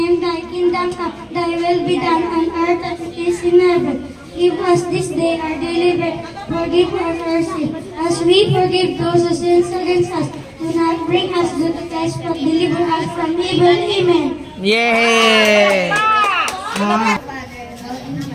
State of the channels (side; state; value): both; identical; correlation 1.00